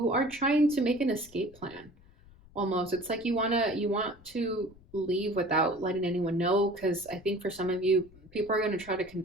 are trying to make an escape plan almost. It's like you want to leave without letting anyone know, because I think for some of you, people are going to try to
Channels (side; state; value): left; noise; rumble, 24 dB below the sound